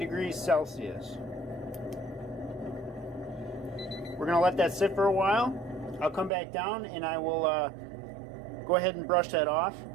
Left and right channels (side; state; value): left; drops out; at 6.3 s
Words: Celsius. We're going to let that sit for a while. I'll come back down and I will go ahead and brush that off.